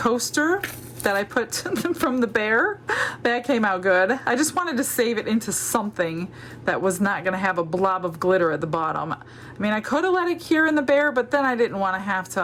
that I put from the bear. That came out good. I just wanted to save it into something that was not going to have a blob of glitter at the bottom. I mean, I could have let it cure in the bear, but then I didn't want to have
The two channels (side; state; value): both; identical; correlation 1.00